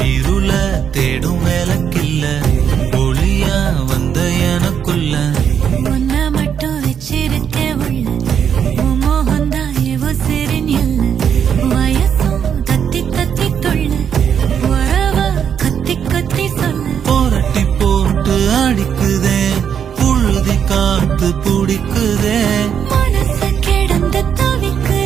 இருள தேடும் வேலைக்கில்ல ஒளியா வந்த எனக்குள்ள உன்னை மட்டும் வச்சிருக்க உள்ள மோகந்தான் எவோ சிறின் இல்ல வயசும் தத்தி தத்தி தொள்ள உறவ கத்தி கத்தி சொல்ல போரட்டி போட்டு அடிக்குதே புழுதி காத்து பிடிக்குதே மனசு கிடந்து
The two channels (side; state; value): left; quieter; 8.0 dB